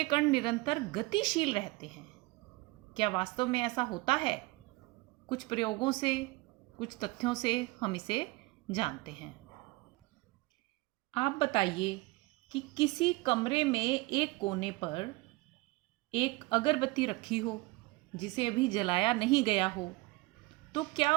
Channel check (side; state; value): left; quieter; 22.6 dB